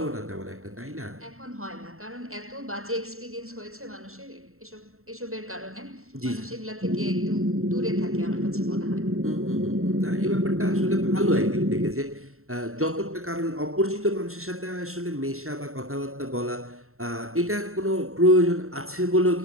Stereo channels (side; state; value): left; late; 0.63 ms